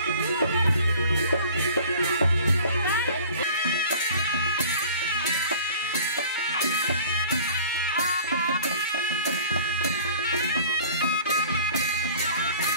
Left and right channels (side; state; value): both; inverted; correlation -0.47